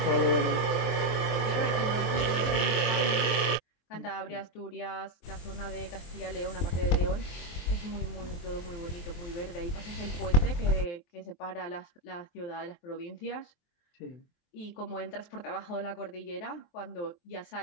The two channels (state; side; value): late; right; 23 ms